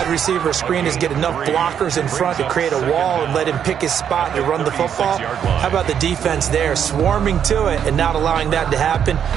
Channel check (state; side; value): quieter; left; 8.5 dB